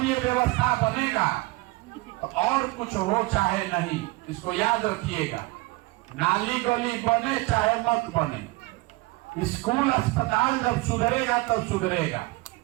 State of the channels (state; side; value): quieter; left; 21.9 dB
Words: ये व्यवस्था बनेगा तो और कुछ हो चाहे नहीं, इसको याद रखिएगा। नाली गली बने चाहे मत बने, स्कूल अस्पताल जब सुधरेगा तब सुधरेगा,